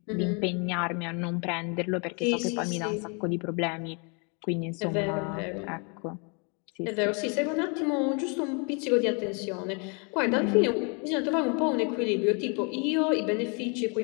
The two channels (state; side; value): quieter; right; 34.8 dB